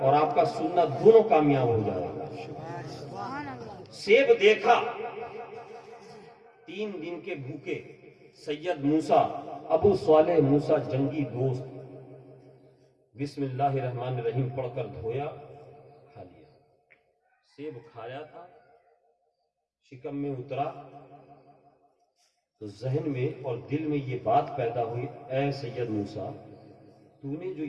اور آپ کا سننا دونوں کامیاب ہو جائے گا. سیب دیکھا، 3 دن کے بھوکے سید موسیٰ، ابو صالح موسیٰ جنگی دوست، بسم اللہ الرحمن الرحیم پڑھ کر دھویا، کھا لیا. سیب کھایا تھا، شکم میں اترا تو ذہن میں اور دل میں یہ بات پیدا ہوئی، اے سید موسیٰ، تو نے جو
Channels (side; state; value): both; identical; correlation 1.00